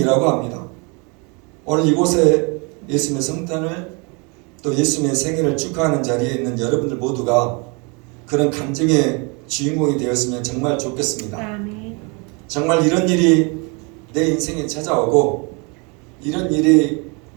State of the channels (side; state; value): left; quieter; 31.6 dB